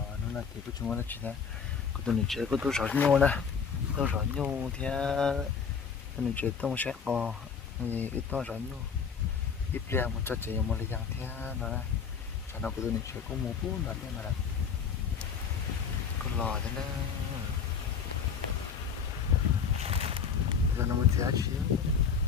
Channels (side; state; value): right; quieter; 6.4 dB